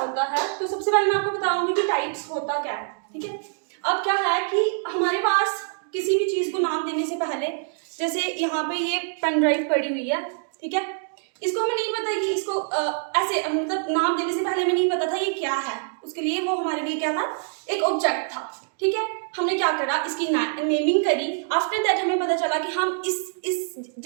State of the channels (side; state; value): left; silent; digital silence